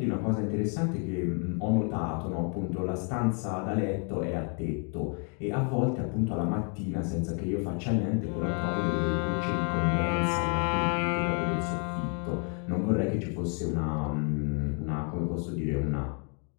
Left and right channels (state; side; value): quieter; right; 40.0 dB